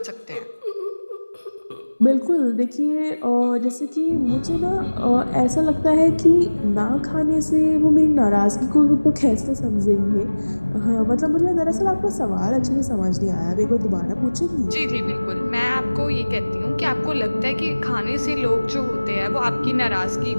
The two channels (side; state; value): both; inverted; correlation -1.00